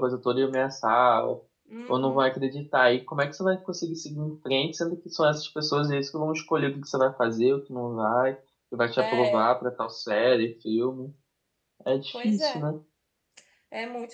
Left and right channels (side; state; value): both; identical; correlation 1.00